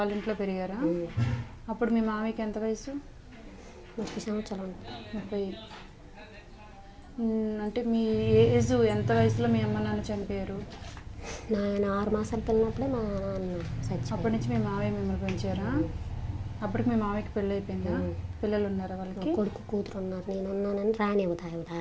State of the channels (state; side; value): identical; both; correlation 1.00